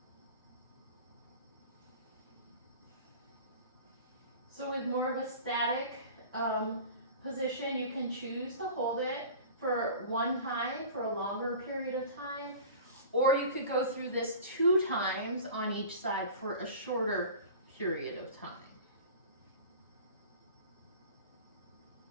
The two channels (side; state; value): both; inverted; correlation -0.39